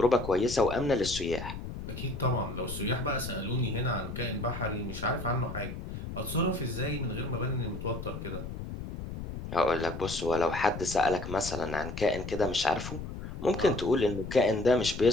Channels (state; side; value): noise; left; rumble, 8 dB below the sound